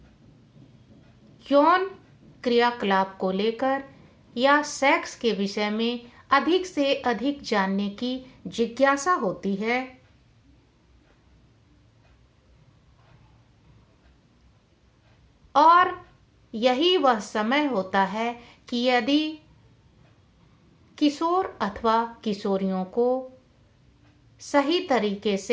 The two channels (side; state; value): both; identical; correlation 1.00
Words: यौन क्रियाकलाप को लेकर या सेक्स के विषय में अधिक से अधिक जानने की जिज्ञासा होती है। और यही वह समय होता है कि यदि किशोर अथवा किशोरियों को सही तरीके